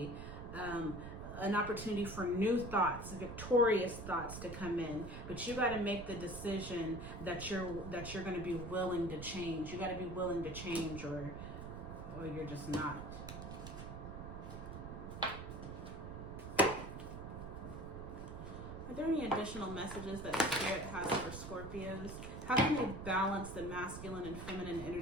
an opportunity for new thoughts, victorious thoughts to come in. But you got to make the decision that you're going to be willing to change. You got to be willing to change, or you're just not. Are there any additional messages that Spirit has for Scorpios? How can they balance the masculine and feminine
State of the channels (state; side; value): noise; right; rumble, 9 dB below the sound